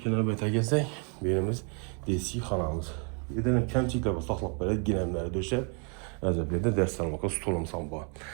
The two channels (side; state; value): left; quieter; 37.1 dB